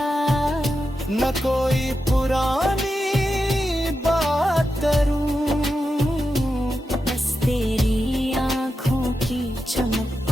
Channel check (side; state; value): both; normal; correlation 0.89